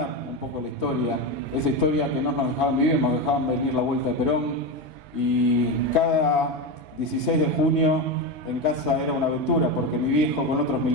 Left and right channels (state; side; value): normal; both; correlation 0.15